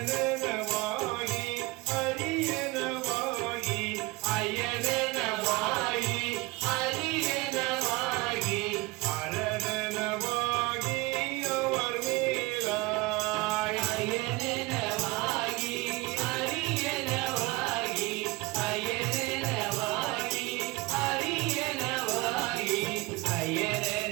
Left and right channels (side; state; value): left; quieter; 22.8 dB